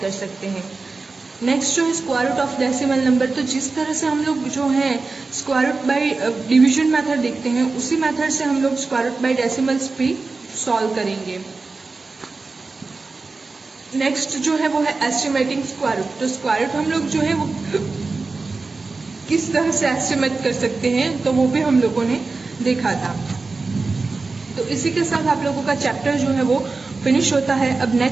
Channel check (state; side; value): quieter; left; 3.9 dB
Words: कर सकते हैं। नेक्स्ट जो है square root of decimal number, तो जिस तरह से हम लोग जो है square root by division method देखते हैं, उसी मेथड से हम लोग स्क्वायर रूट बाय डेसिमल्स भी सॉल्व करेंगे। नेक्स्ट जो है वो है एस्टिमेटिंग स्क्वायर रूट। तो स्क्वायर रूट हम लोग जो है वो किस तरह से एस्टिमेट कर सकते हैं, तो वो भी हम लोगों ने देखा था। तो इसी के साथ आप लोगों का चैप्टर जो है वो फिनिश होता है। अब